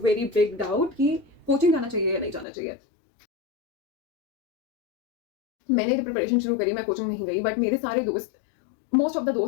very big doubt कि कोचिंग जाना चाहिए या नहीं जाना चाहिए. मैंने जब प्रिपरेशन शुरू करी मैं कोचिंग नहीं गई, बट मेरे सारे दोस्त, मोस्ट ऑफ द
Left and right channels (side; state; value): right; drops out; at 2.5 s